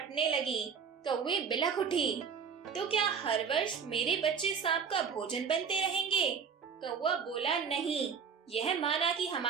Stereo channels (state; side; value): quieter; left; 6.4 dB